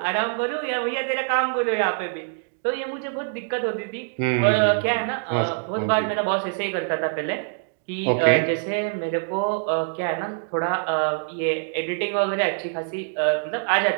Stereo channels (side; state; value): left; silent; digital silence